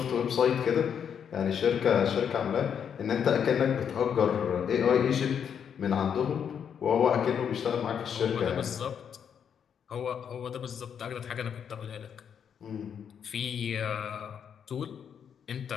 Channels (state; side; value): quieter; right; 7.9 dB